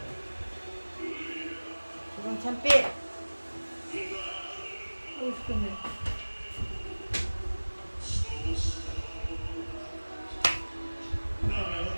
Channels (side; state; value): both; inverted; correlation -1.00